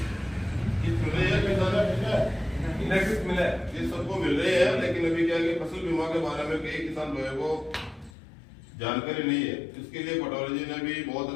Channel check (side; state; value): right; drops out; at 8.1 s